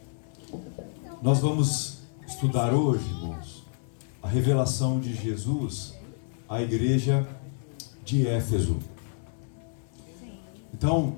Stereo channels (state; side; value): silent; right; digital silence